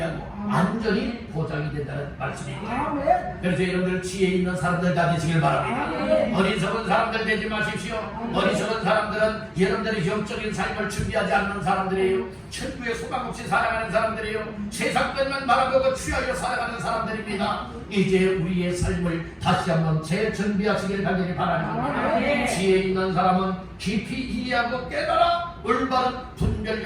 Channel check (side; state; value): both; identical; correlation 1.00